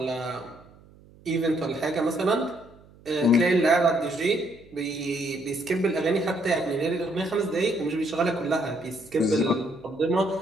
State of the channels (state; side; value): noise; right; hum, 25 dB below the sound